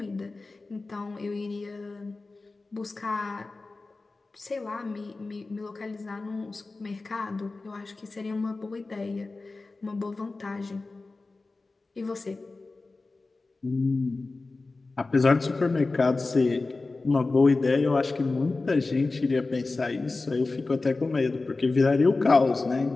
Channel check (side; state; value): right; quieter; 3.5 dB